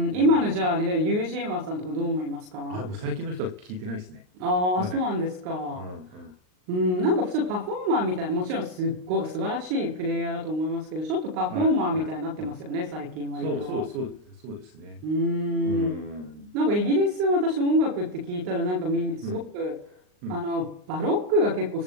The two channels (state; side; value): late; left; 39 ms